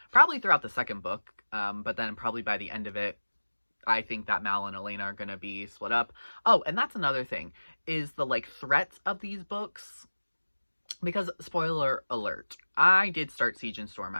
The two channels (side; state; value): both; inverted; correlation -1.00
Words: probably throughout the second book, but then probably by the end of it, I think that Mal and Elena are going to be split up. Oh, and that's another thing, is the, like, threats of these books. Because, spoiler alert, I did start Siege and Storm,